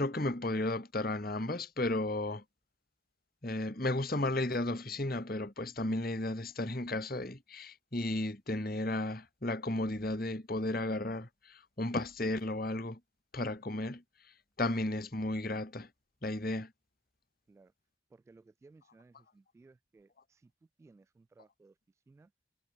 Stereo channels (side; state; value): both; normal; correlation 0.53